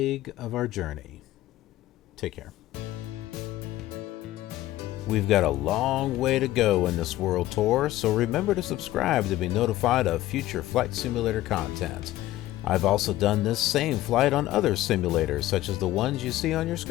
of our journey. Take care. We've got a long way to go in this world tour, so remember to subscribe to be notified of future Flight Simulator content. I've also done this same flight on other simulators, such as the ones you see on your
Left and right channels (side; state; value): right; quieter; 15.5 dB